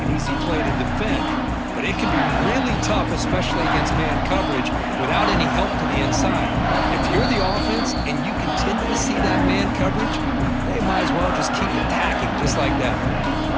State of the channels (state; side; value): identical; both; correlation 1.00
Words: an easy play to defend, but it can be really tough, especially against man coverage, without any help to the inside. If you're the offense and you continue to see that man coverage, they might as well just keep attacking just like that.